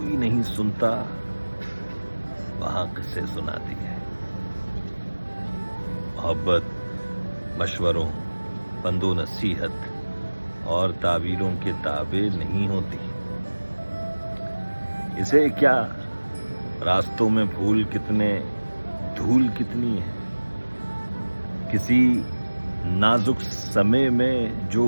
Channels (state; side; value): inverted; both; correlation -1.00